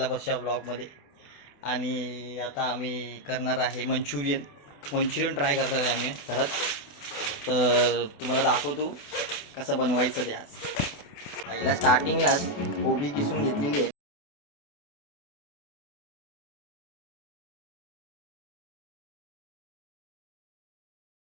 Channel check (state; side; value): late; right; 28 ms